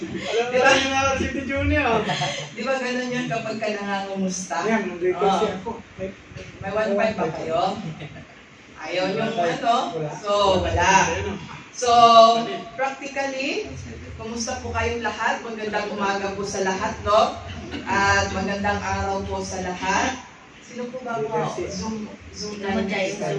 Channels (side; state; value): both; identical; correlation 1.00